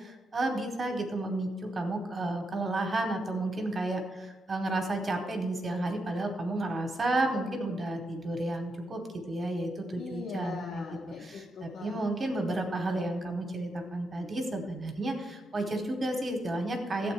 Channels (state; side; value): normal; both; correlation 0.83